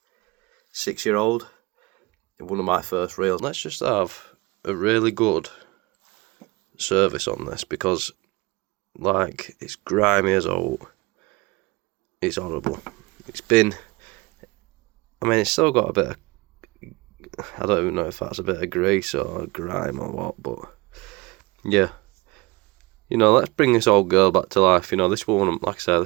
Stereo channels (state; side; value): quieter; left; 23.6 dB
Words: 6-year-old. One of my first reels. Let's just have a really good service on this because, like, it's grimy as old. It's horrible. It's still got a bit of, I don't even know if that's a bit of grease or grime or what, but yeah. Let's bring this old girl back to life. This one, like I said,